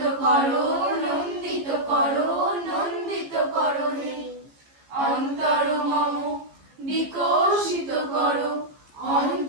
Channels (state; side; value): late; left; 14 ms